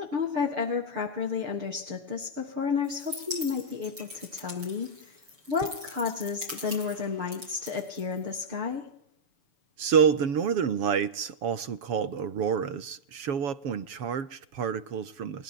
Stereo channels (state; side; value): late; left; 6.9 ms